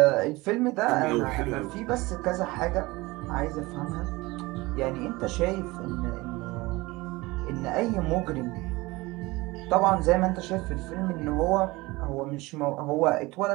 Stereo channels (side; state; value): left; quieter; 21.8 dB